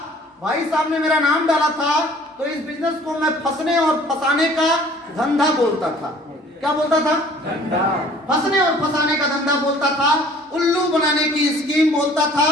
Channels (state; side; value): normal; both; correlation 0.52